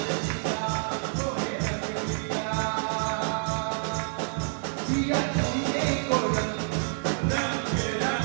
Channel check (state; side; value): silent; left; 59 dB below the other